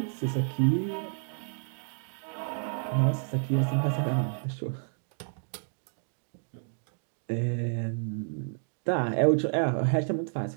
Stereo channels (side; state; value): left; silent; digital silence